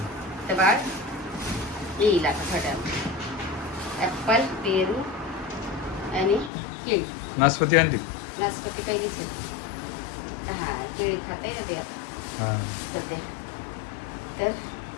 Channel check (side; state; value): right; drops out; at 6.5 s